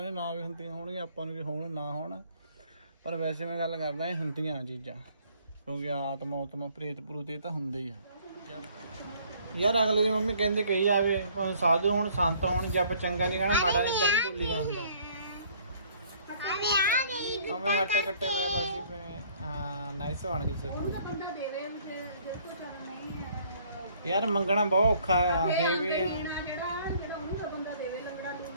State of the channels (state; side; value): inverted; both; correlation -0.59